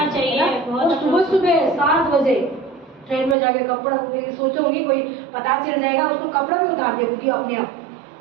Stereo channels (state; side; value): drops out; left; at 3.4 s